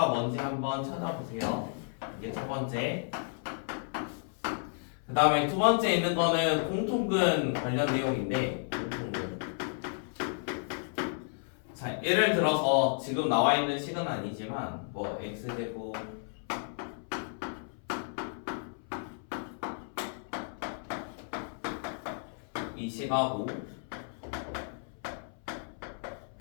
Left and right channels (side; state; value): right; silent; 56 dB below the other